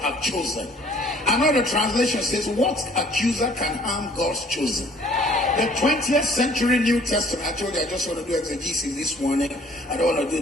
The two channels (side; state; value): both; normal; correlation 0.56